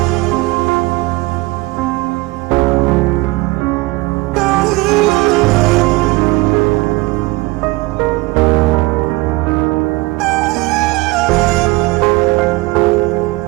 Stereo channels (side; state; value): left; quieter; 22.0 dB